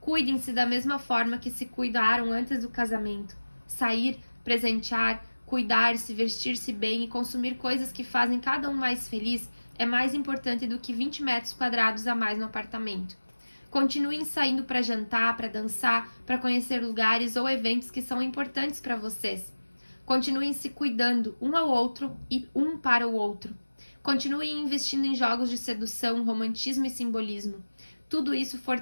Cuidem-se da mesma forma que se cuidaram antes do casamento. Sair, presentear, cuidar-se, vestir-se bem e consumir coisas que fazem cada um mais feliz é mais importante do que 20 metros quadrados a mais no apartamento. Continuem saindo para jantar, para dançar, para conhecer lugares ou eventos que são importantes para vocês. Continuem se cuidando um ao outro e um para o outro. Continuem investindo em jogos de sedução, romantismo e simbolismo. Tudo isso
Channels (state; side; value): inverted; both; correlation -1.00